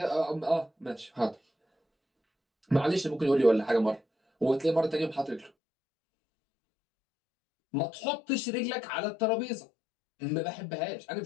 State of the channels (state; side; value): drops out; right; at 5.5 s